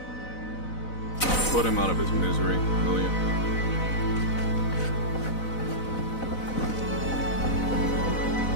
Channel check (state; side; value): late; right; 4.0 ms